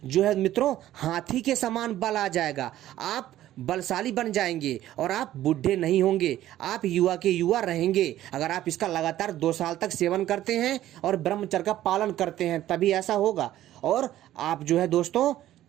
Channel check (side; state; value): left; quieter; 13.4 dB